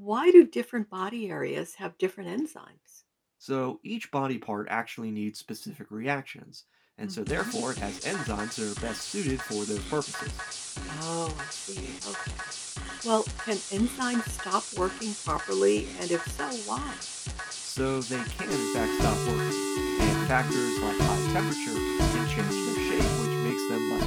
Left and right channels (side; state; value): both; identical; correlation 1.00